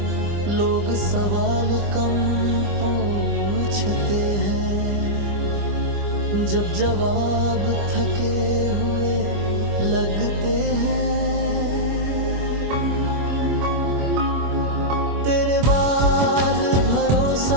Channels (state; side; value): late; left; 25 ms